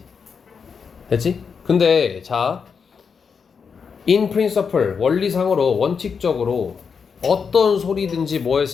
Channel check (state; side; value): quieter; right; 6.0 dB